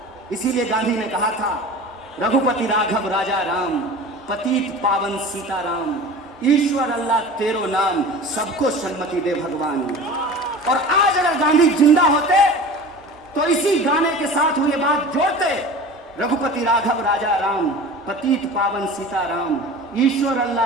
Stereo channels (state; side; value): normal; both; correlation 0.37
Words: इसीलिए गांधी ने कहा था, रघुपति राघव राजा राम, पतित पावन सीताराम, ईश्वर अल्लाह तेरो नाम, सबको सन्मति दे भगवान। और आज अगर गांधी जिंदा होते तो इसी गाने के साथ वो ये बात जोड़ते, रघुपति राघव राजा राम, पतित पावन सीताराम, ईश्वर